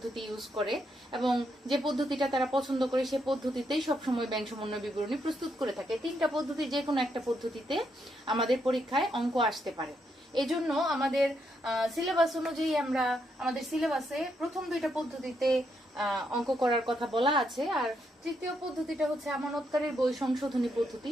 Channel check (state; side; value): normal; both; correlation 0.78